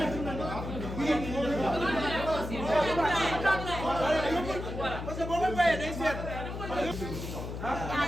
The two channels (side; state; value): left; noise; hum, 7 dB below the sound